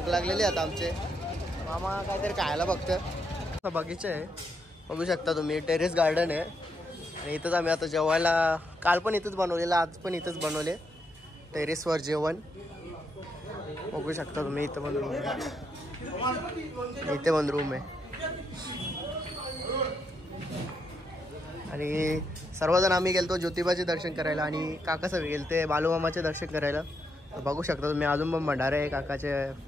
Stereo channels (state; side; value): normal; both; correlation 0.79